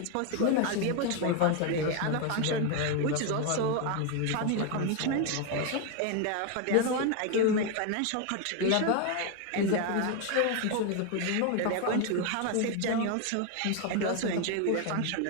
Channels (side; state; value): both; different; correlation 0.01